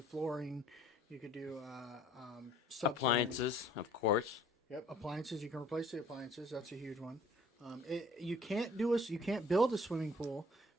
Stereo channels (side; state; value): both; normal; correlation 0.55